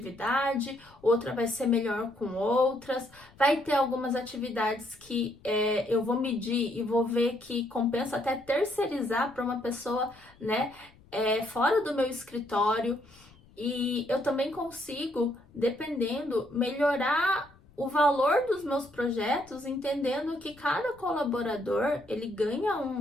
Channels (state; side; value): noise; left; rumble, 26 dB below the sound